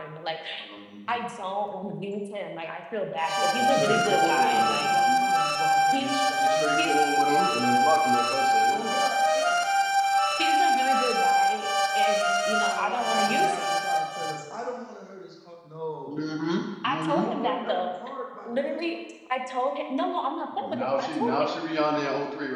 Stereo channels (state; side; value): identical; both; correlation 1.00